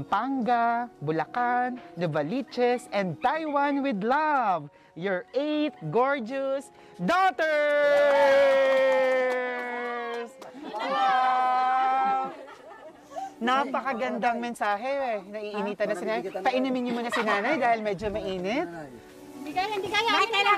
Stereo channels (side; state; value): both; identical; correlation 1.00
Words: Bulacan, Novaliches, and Taiwan with love, your 8 gorgeous daughters! Wow! Napakagandang mensahe. Naiinitan na si Nanay. Painumin niyo muna si Nanay dahil medyo mainit. Hindi kaya. May